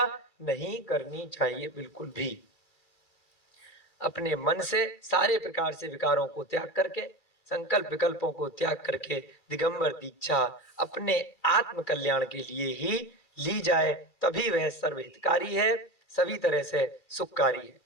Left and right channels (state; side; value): late; right; 2.3 ms